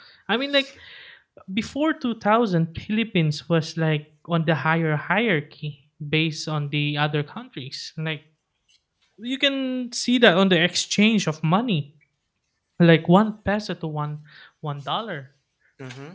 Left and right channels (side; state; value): both; identical; correlation 1.00